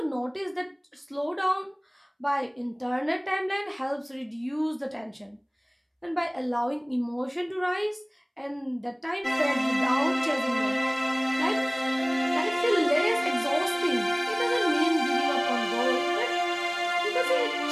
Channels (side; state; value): both; identical; correlation 1.00